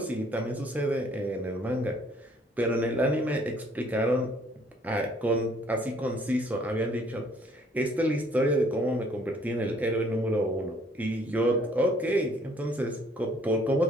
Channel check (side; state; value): both; normal; correlation 0.61